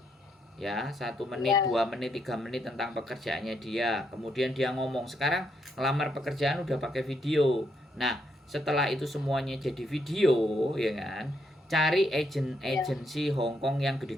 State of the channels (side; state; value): both; normal; correlation 0.77